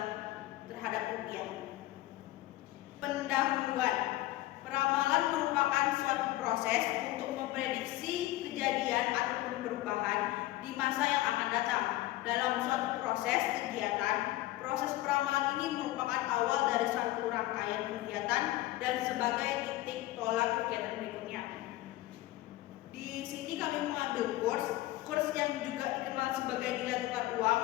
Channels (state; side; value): quieter; right; 16.9 dB